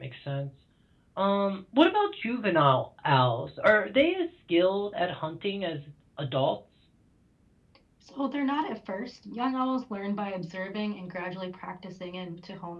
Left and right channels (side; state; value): both; identical; correlation 1.00